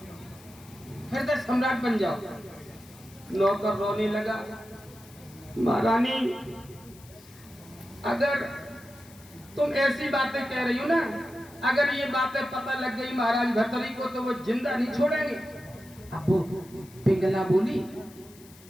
हृदय सम्राट बन जाओ। नौकर रोने लगा, महारानी अगर तुम ऐसी बातें कह रही हो ना, अगर ये बातें पता लग गई महाराज भर्तरी को तो वो जिंदा नहीं छोड़ेंगे। अब वो पिंगला बोली,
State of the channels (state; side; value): noise; left; hiss, 23 dB below the sound